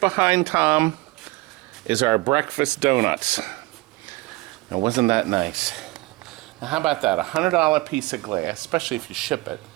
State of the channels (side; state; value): left; quieter; 21.8 dB